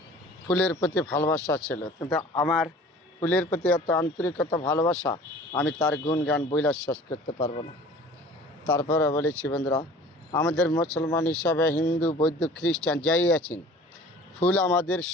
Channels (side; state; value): both; normal; correlation 0.46